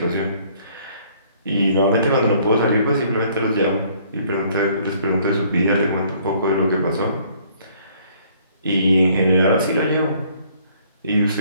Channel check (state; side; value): inverted; both; correlation -0.61